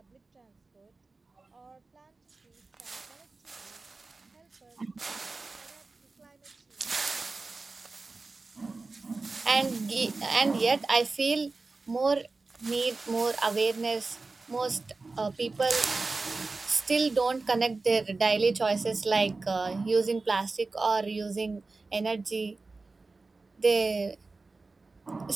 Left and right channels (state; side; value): quieter; left; 3.7 dB